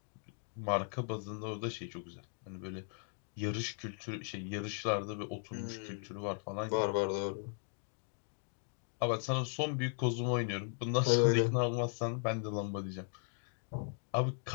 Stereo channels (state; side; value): silent; right; 53 dB below the other